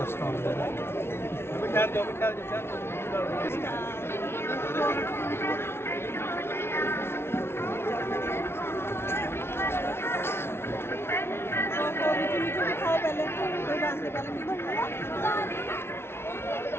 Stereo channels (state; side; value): late; right; 0.12 ms